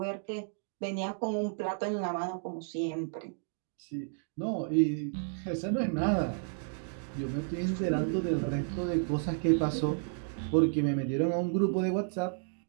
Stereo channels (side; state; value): left; silent; digital silence